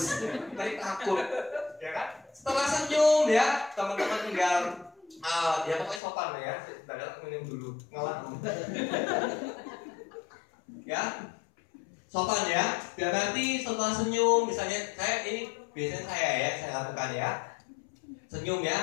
Nanti takut. Ya kan? Setelah senyum ya, teman-teman tinggal ya pokoknya sopan ya. Sebentar minum dulu. Ngalah. Ya, sopan ya. Biar nanti setelah senyum, misalnya saya ini biasanya saya lakukan ya. Senyum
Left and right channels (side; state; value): right; drops out; at 6.0 s